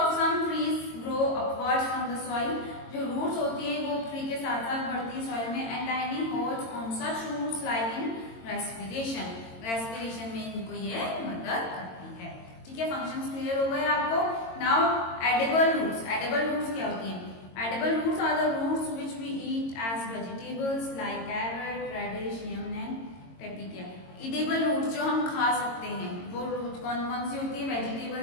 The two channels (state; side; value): late; right; 22 ms